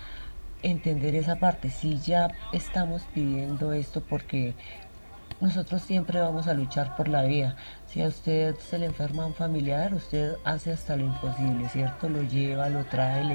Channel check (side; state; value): both; inverted; correlation -1.00